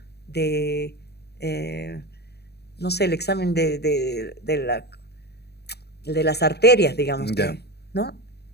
de, no sé, el examen de las arterias, digamos, Ya. que, ¿no?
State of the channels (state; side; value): late; right; 0.47 ms